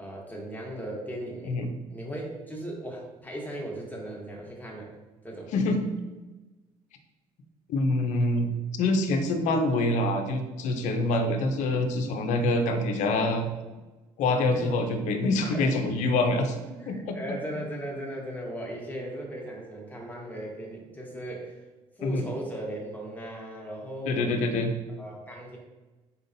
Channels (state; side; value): normal; both; correlation 0.49